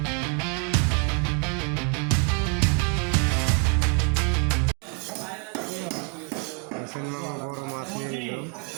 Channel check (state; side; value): quieter; left; 36.6 dB